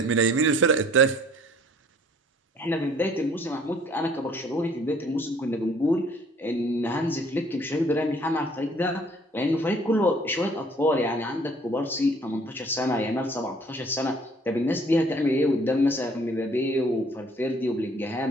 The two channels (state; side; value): normal; both; correlation 0.57